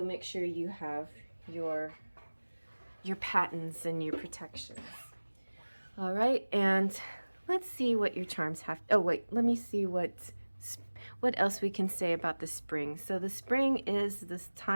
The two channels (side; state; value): both; inverted; correlation -1.00